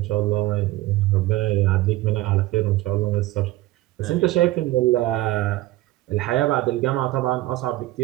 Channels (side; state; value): left; quieter; 17.2 dB